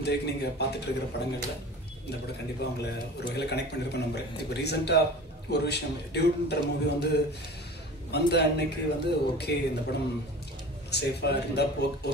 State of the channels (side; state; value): both; normal; correlation 0.38